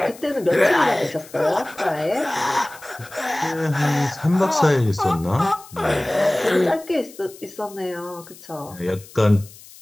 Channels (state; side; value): noise; left; hiss, 20 dB below the sound